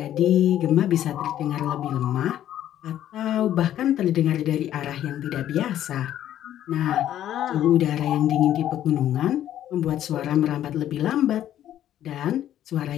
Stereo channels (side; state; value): right; quieter; 11.7 dB